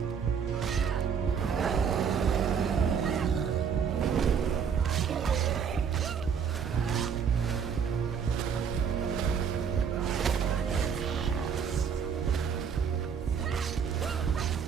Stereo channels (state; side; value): quieter; left; 6.9 dB